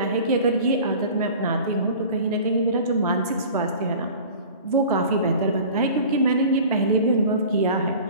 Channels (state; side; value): inverted; both; correlation -0.42